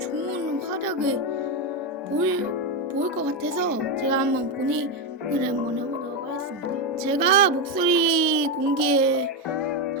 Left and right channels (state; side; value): normal; both; correlation 0.08